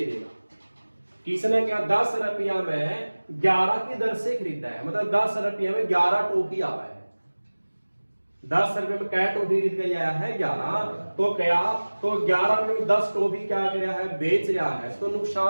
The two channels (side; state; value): both; inverted; correlation -1.00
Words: देगा। किसने क्या 10 रुपया में 11 की दर से खरीदा है, मतलब 10 रुपया में 11 टॉफी आवा है। 10 रुपए में क्या टॉफी खरीद के आया है 11, तो क्या तो 11 रुपए में 10 टॉफी क्या कर रहा है बेच रहा है, तो